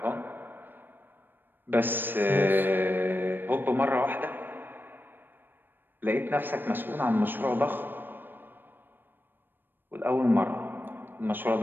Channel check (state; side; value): late; left; 0.094 ms